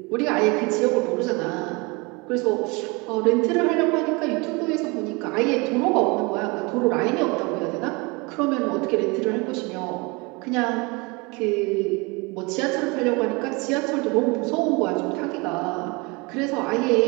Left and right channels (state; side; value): quieter; left; 27.3 dB